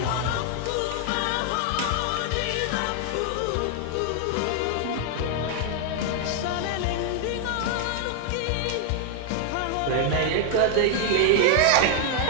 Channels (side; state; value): both; different; correlation 0.00